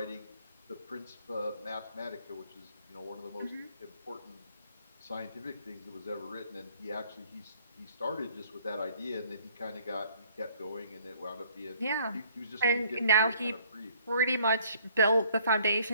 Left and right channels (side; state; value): both; inverted; correlation -0.59